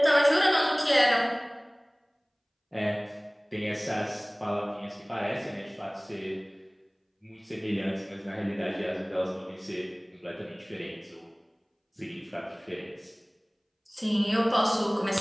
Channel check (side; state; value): both; identical; correlation 1.00